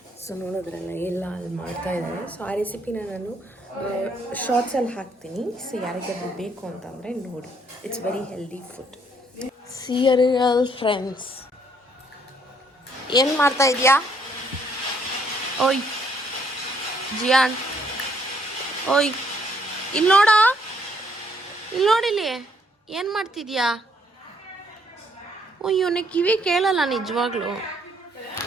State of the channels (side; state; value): both; normal; correlation 0.68